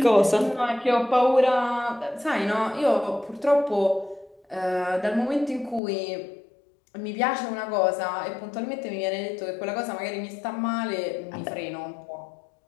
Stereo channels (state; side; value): drops out; right; at 5.8 s